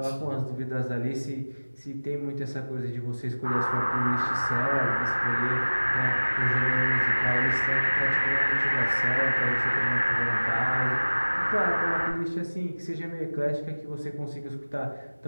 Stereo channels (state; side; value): inverted; both; correlation -1.00